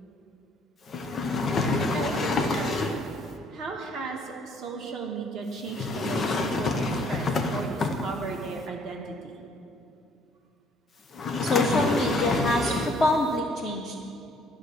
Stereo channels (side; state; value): both; normal; correlation 0.61